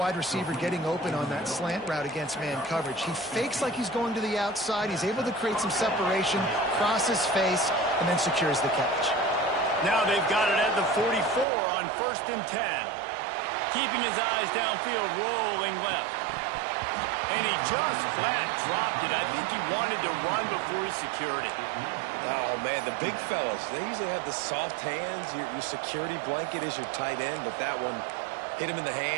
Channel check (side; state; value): left; drops out; at 11.5 s